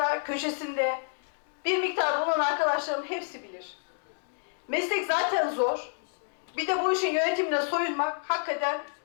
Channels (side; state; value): right; silent; digital silence